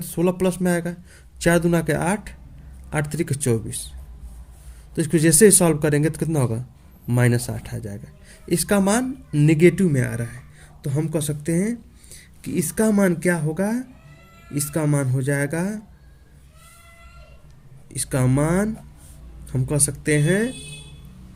16 प्लस में आएगा, 4 दूना के 8, 8 3 के 24। तो इसको जैसे ही सॉल्व करेंगे तो कितना होगा, -8 आ जाएगा। इसका मान निगेटिव में आ रहा है, तो हम कह सकते हैं कि इसका मान क्या होगा, इसका मान हो जाएगा, इसका मान हम कह सकते हैं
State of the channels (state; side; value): identical; both; correlation 1.00